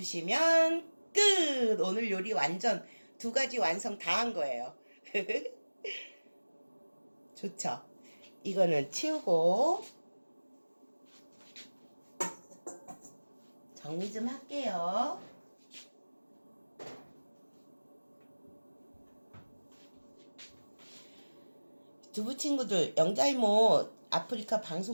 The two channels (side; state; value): both; inverted; correlation -1.00